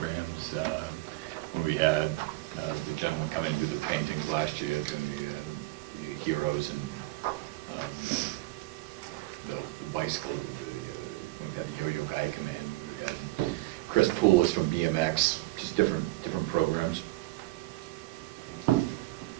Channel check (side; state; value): left; quieter; 20.0 dB